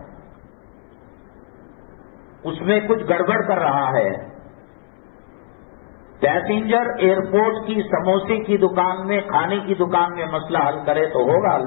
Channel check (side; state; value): right; silent; 64 dB below the other